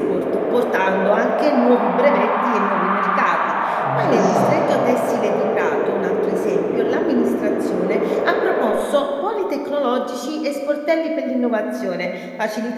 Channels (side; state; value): both; identical; correlation 1.00